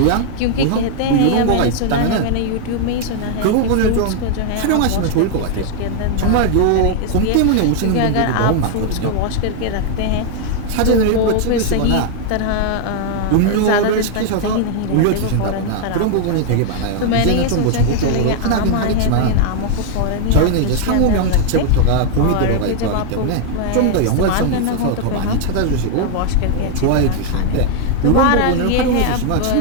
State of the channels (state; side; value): different; both; correlation 0.00